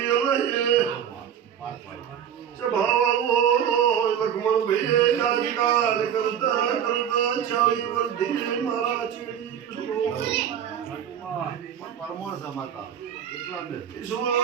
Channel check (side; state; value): left; quieter; 9.1 dB